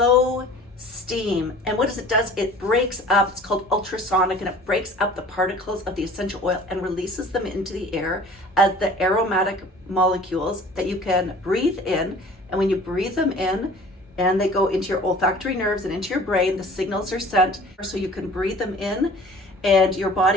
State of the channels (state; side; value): normal; both; correlation 0.46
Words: steam. And what it does, it breaks up, it's called ultrasonic, and it breaks up the particles of the essential oil and releases them into the air as the aromatic molecules that you can breathe in. And when you breathe them in and they go into your olfactory nerves and into your brain, the signals are sent so you can breathe them in and your